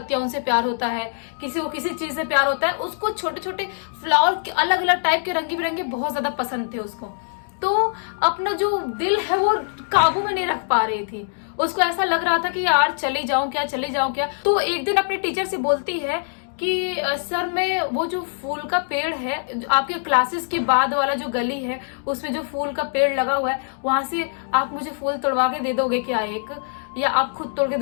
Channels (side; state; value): right; silent; digital silence